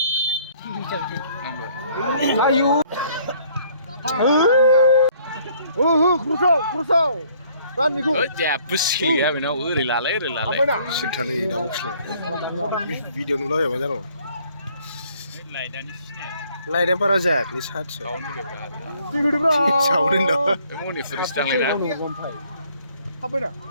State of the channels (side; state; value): both; inverted; correlation -0.61